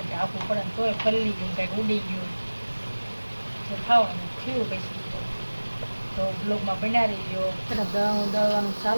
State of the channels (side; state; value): both; inverted; correlation -1.00